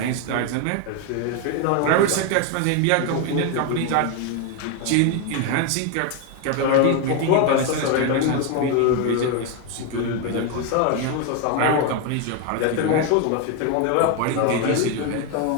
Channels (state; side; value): different; both; correlation 0.01